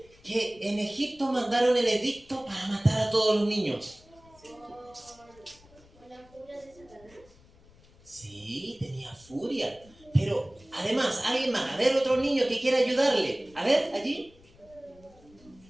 que en Egipto mandaron el edicto para matar a todos los niños? ¿Por la furia de Satanás? Sí, tenía furia. Pero además, alguien más. A ver, otro niño que quiera ayudarle. A ver, allí.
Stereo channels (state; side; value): noise; left; rumble, 26 dB below the sound